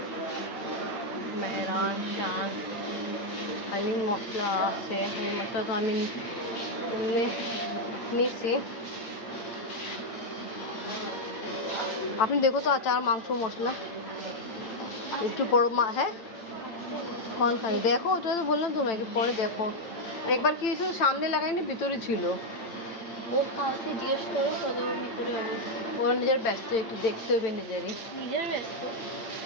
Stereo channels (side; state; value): right; late; 8.8 ms